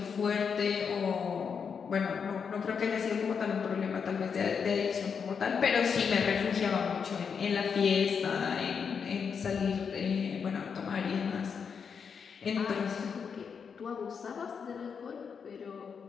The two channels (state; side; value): quieter; right; 6.3 dB